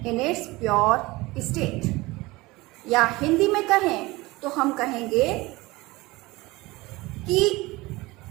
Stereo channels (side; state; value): left; quieter; 21.2 dB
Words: in its pure state. या हिंदी में कहें तो हम कहेंगे कि